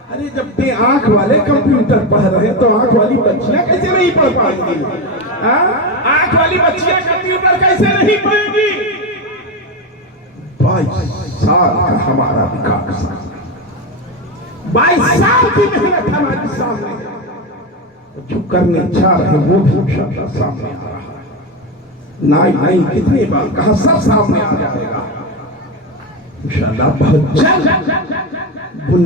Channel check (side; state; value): both; normal; correlation 0.15